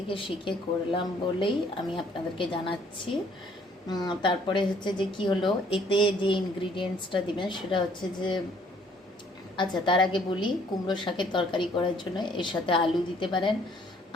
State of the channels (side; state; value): both; normal; correlation 0.61